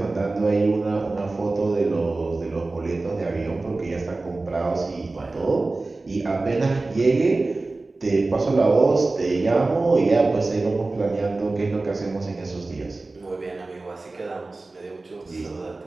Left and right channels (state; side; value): quieter; left; 3.3 dB